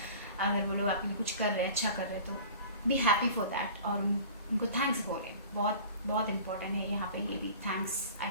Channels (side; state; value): both; inverted; correlation -0.43